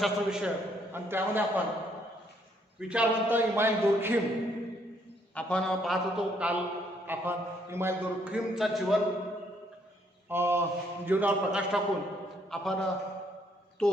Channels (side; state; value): both; normal; correlation 0.69